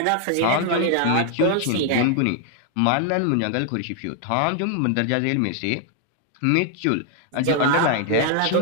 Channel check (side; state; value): both; different; correlation 0.00